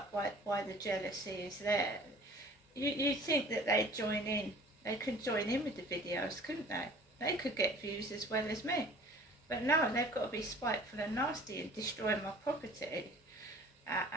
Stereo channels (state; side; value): normal; both; correlation 0.48